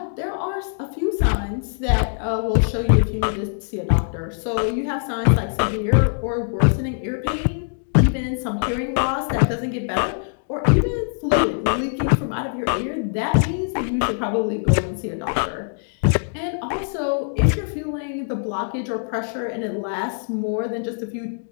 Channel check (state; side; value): silent; right; digital silence